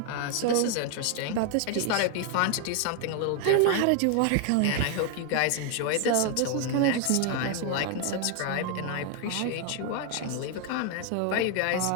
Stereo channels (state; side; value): different; both; correlation 0.01